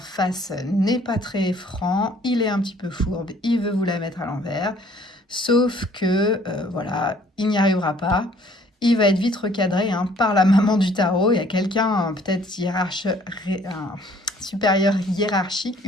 n'est pas très franc, il est un petit peu fourbe, il veut vous la mettre à l'envers, sauf que, voilà, il n'y arrivera pas. Il va être vite recadré hein, par la maman du tarot. Il y a quelqu'un, peut-être un supérieur hiérarchique,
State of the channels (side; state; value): both; normal; correlation 0.58